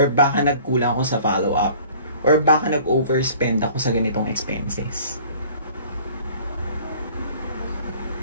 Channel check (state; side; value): inverted; both; correlation -0.50